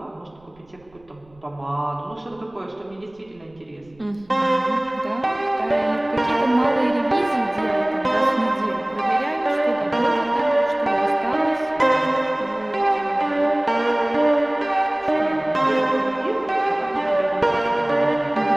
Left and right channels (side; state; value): right; noise; rumble, 30 dB below the sound